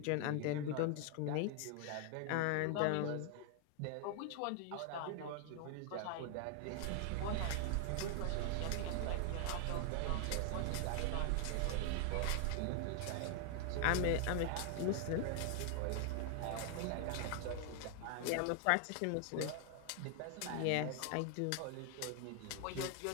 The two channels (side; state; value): both; different; correlation 0.00